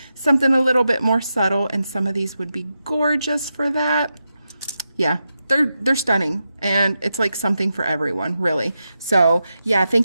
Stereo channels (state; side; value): inverted; both; correlation -0.88